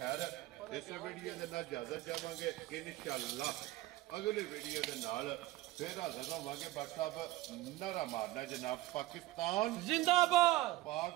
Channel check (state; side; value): quieter; left; 17.2 dB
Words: ਇਸ ਵੀਡੀਓ ਦੇ ਨਾਲ ਇਜਾਜ਼ਤ ਚਾਹਾਂਗੇ ਇਨਸ਼ਾਅੱਲਾ ਅਗਲੇ ਵੀਡੀਓ ਦੇ ਨਾਲ ਫਿਰ ਹਾਜ਼ਰ ਹੋਵਾਂਗੇ। WhatsApp ਨਾਰਾ ਮਾਰਨਾ ਜਨਾਬ। ਪਾਕਿਸਤਾਨ ਜ਼ਿੰਦਾਬਾਦ,